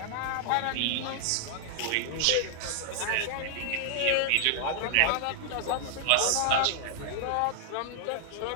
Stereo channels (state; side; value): different; both; correlation -0.01